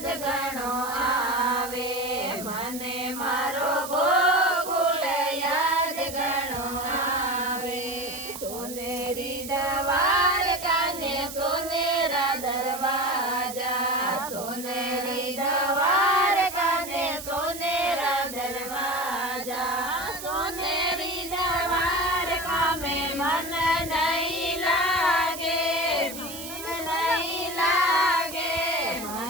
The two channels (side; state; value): right; noise; hiss, 10 dB below the sound